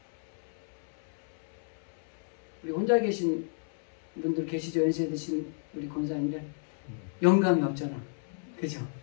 우리 혼자 계신 분들 계시죠? 연세 드신 우리 권사님들. 영감이 없잖아. 그죠?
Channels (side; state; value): right; silent; 56 dB below the other